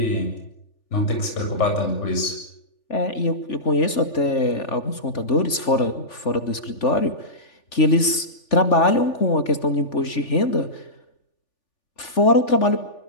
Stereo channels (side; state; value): right; late; 3.4 ms